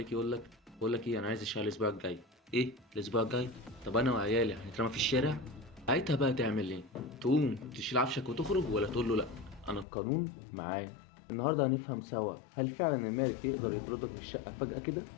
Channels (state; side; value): drops out; right; at 9.9 s